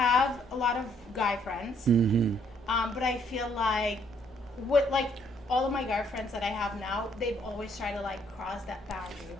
a lot of guy friends, but I feel like all of my guy friends that I have now, they've always tried to like cross that boundary,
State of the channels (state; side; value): normal; both; correlation 0.67